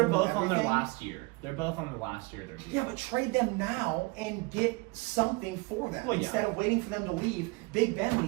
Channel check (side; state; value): left; quieter; 26.0 dB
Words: whole new both on their everything. last year. They're both on their last year. Yeah, but trade them now and get something for them Well, yeah. instead of waiting for them to leave. Big Ben